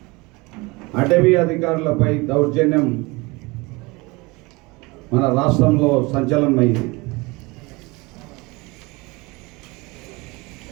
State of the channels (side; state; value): left; quieter; 24.7 dB